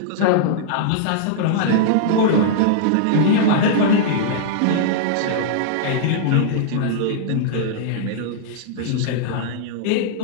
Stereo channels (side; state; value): both; different; correlation -0.02